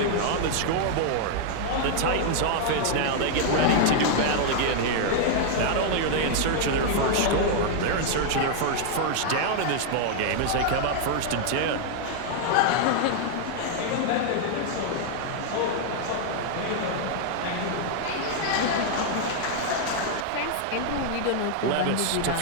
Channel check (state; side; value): different; both; correlation 0.00